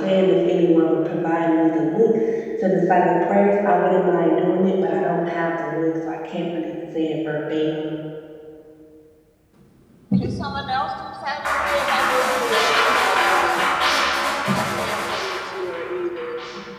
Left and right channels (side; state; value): both; identical; correlation 1.00